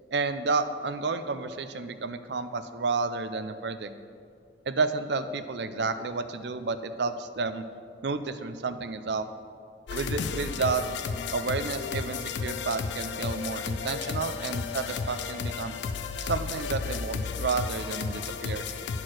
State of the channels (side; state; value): both; normal; correlation -0.07